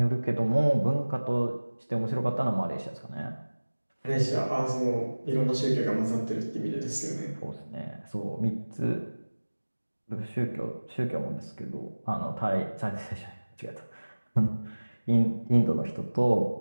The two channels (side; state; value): both; inverted; correlation -1.00